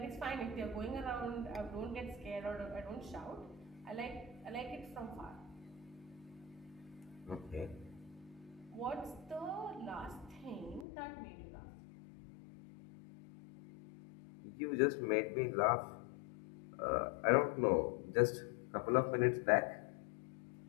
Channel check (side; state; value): right; drops out; at 10.9 s